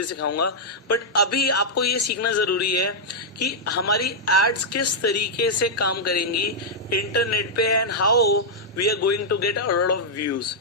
सिखाऊंगा। बट अभी आपको ये सीखना जरूरी है कि हमारी एड्स किस तरीके से काम करेंगी इंटरनेट पे and how we are going to get a lot of views.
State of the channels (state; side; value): normal; both; correlation -0.07